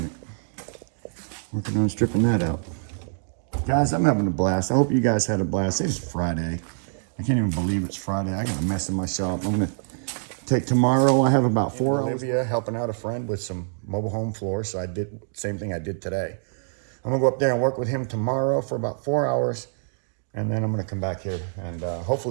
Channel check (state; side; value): silent; left; digital silence